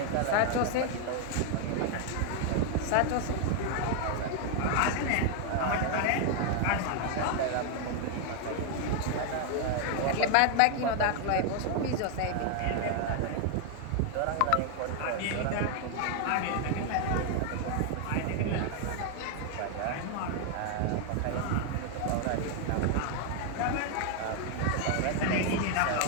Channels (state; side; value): different; both; correlation 0.00